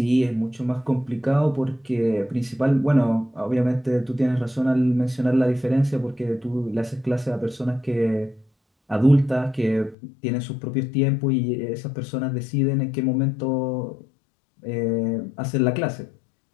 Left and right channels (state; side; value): drops out; right; at 10.0 s